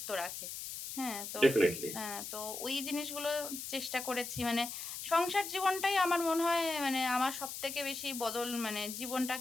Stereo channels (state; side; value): noise; left; hiss, 7 dB below the sound